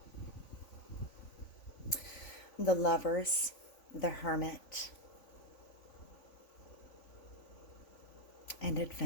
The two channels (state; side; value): late; right; 3.5 ms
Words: The lovers, the hermit, and